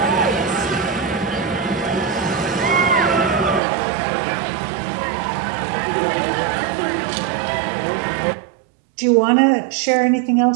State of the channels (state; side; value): drops out; left; at 3.6 s